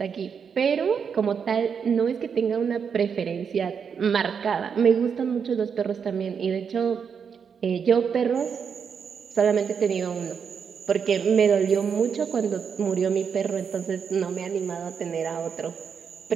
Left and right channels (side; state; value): left; quieter; 6.7 dB